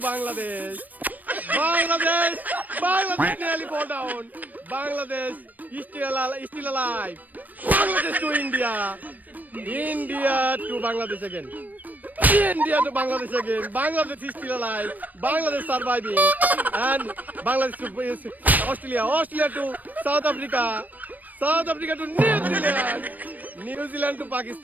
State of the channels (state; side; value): late; left; 0.083 ms